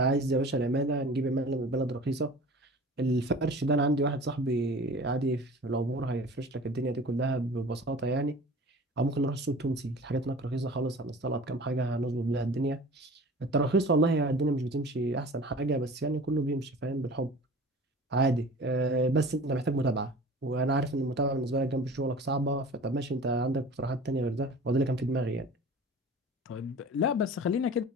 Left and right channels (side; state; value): both; normal; correlation 0.41